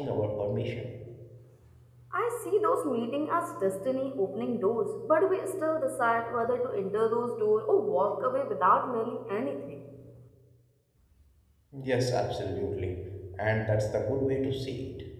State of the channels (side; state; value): both; identical; correlation 1.00